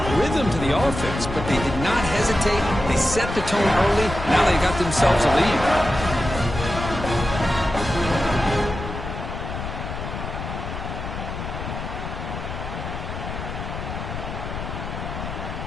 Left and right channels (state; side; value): noise; left; rumble, 7 dB below the sound